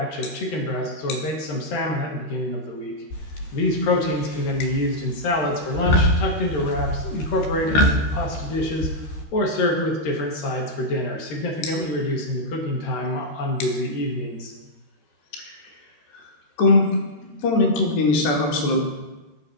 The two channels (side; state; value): right; late; 14 ms